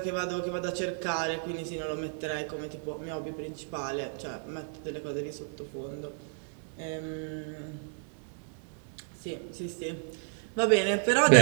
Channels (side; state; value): left; silent; digital silence